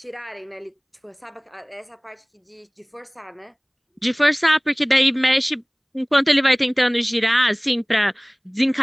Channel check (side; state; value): both; identical; correlation 1.00